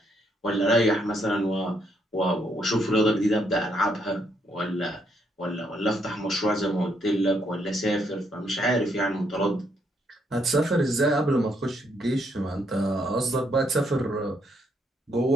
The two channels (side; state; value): both; normal; correlation 0.74